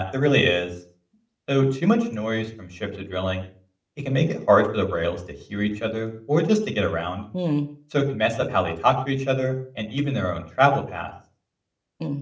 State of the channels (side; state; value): both; identical; correlation 1.00